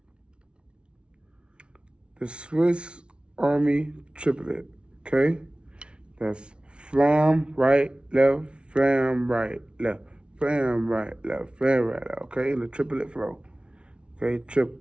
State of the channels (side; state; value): left; late; 0.058 ms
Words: Swiss Army triplet. Okay, that's flam right, left, flam right, left, flam right, left, flam right, left. Okay, in the triplet flow. Okay,